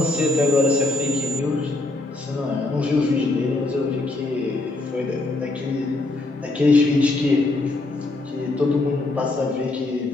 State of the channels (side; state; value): right; quieter; 3.1 dB